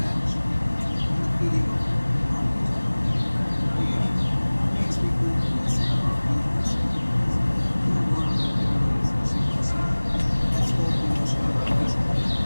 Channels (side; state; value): both; inverted; correlation -1.00